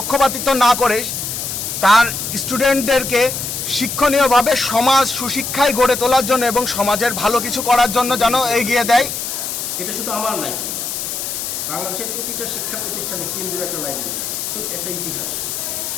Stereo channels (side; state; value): left; noise; hiss, 4 dB below the sound